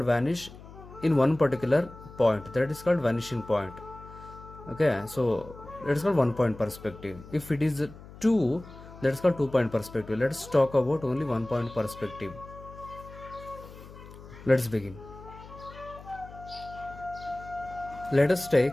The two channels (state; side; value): noise; left; hum, 17 dB below the sound